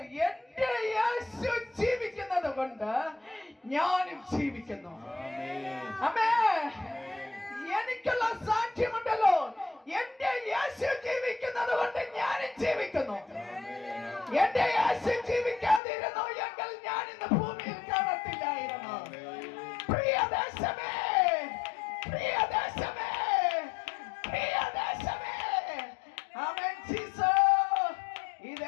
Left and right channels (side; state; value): right; drops out; at 15.8 s